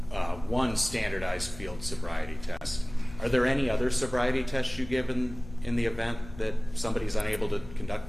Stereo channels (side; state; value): left; noise; hum, 16 dB below the sound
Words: one standardized field sobriety test. Are there any other sobriety tests you give in the event that somebody's unable to conduct